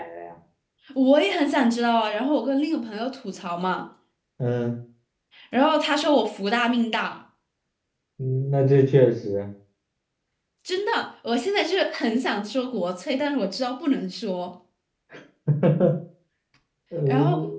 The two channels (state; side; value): identical; both; correlation 1.00